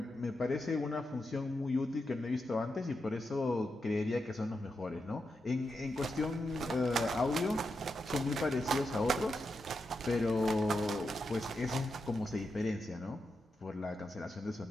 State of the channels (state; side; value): normal; both; correlation 0.86